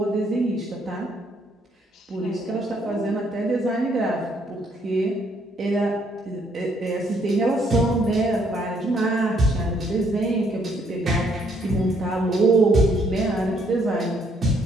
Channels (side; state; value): both; normal; correlation 0.69